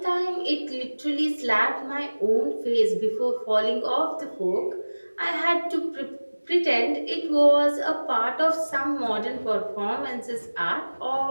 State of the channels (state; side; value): inverted; both; correlation -1.00